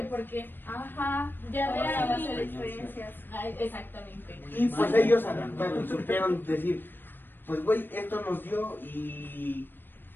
porque Ajá. ya de Ahora va a ahí... ser experiencias. Ay, exactamente. Y pues ellos adaptaron, supieron decir, pues güey, esto nos dio y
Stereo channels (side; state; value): right; late; 0.095 ms